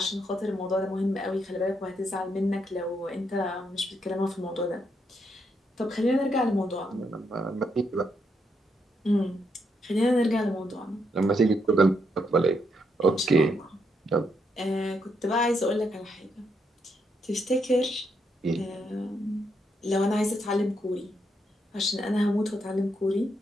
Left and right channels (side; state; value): both; normal; correlation 0.78